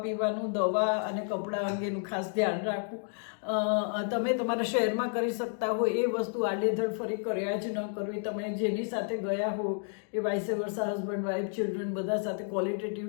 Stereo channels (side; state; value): right; silent; 57 dB below the other